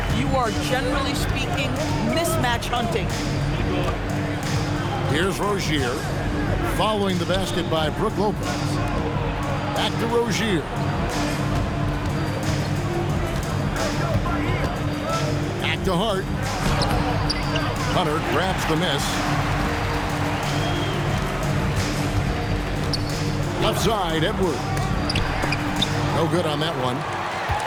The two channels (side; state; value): both; identical; correlation 1.00